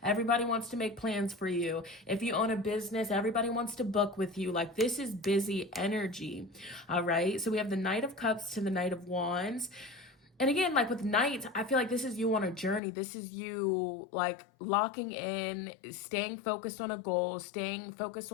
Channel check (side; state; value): right; drops out; at 12.8 s